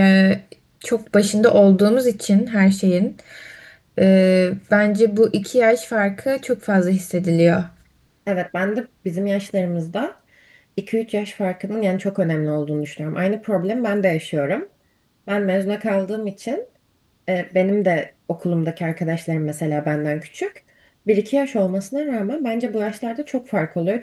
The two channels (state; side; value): identical; both; correlation 1.00